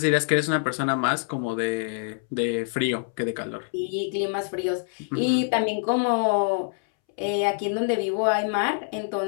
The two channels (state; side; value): silent; right; 61 dB below the other